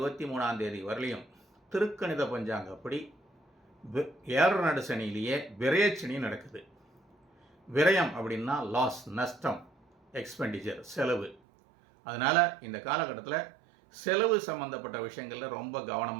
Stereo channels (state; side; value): drops out; left; at 11.4 s